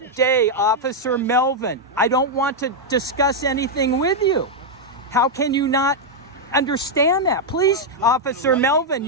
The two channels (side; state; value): both; normal; correlation -0.02